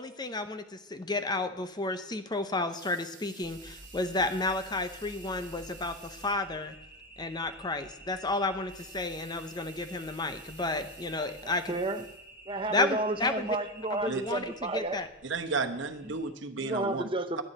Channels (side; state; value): both; normal; correlation 0.17